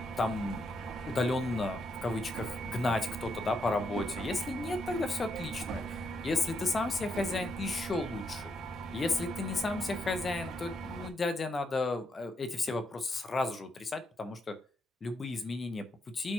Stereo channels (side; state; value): both; normal; correlation 0.78